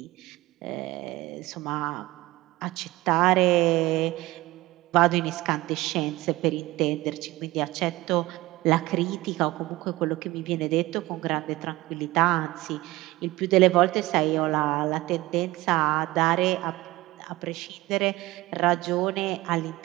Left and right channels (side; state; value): left; quieter; 19.0 dB